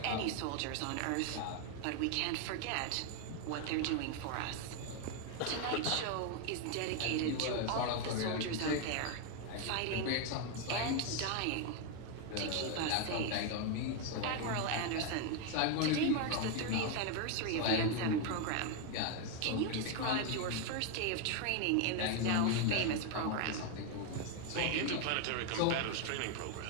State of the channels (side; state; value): both; different; correlation 0.01